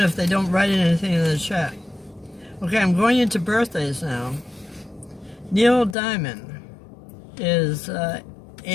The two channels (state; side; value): drops out; right; at 6.0 s